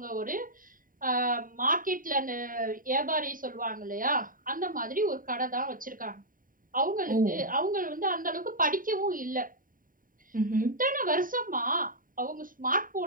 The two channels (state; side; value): late; left; 0.40 ms